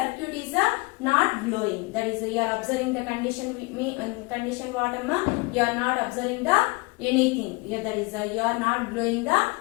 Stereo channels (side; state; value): right; quieter; 26.1 dB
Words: is not glowing. That is you are observing the condition condition what amma, you are not observing the anything. That is you are not glowing the